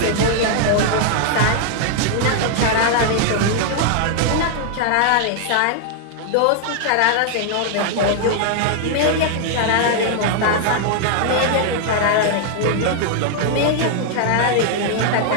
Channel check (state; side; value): different; both; correlation 0.00